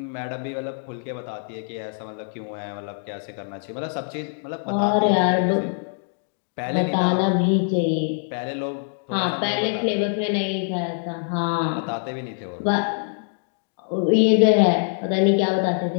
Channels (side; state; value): right; silent; digital silence